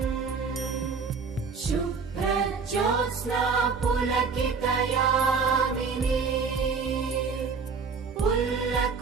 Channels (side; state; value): left; quieter; 5.2 dB